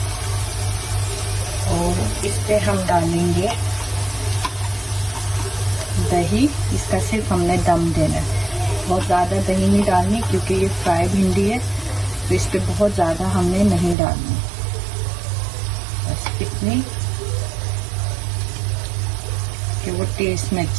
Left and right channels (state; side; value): drops out; left; at 14.0 s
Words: और इस पे हम डालेंगे दही। इसका सिर्फ हमने दम देना है, बहुत ज़्यादा दही नहीं डालनी क्योंकि ये फ्राई भिंडी है, तो इस पे बहुत ज़्यादा हमने नहीं डालनी, बस इतनी कि वो टेस्ट में